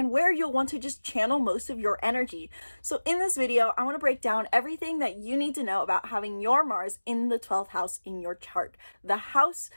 where you'll want to just channel most of your energy. So in this video, I want to break down everything that you need to know about having your Mars in the 12th house in your chart, the house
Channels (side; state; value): both; inverted; correlation -1.00